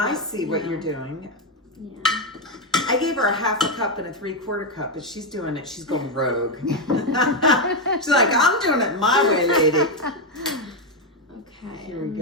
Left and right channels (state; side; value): normal; both; correlation 0.05